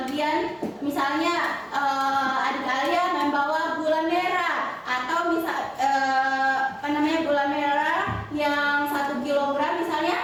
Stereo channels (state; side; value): identical; both; correlation 1.00